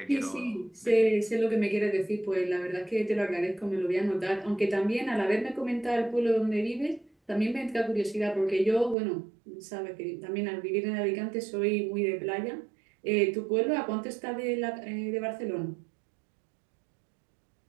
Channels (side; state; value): left; drops out; at 9.0 s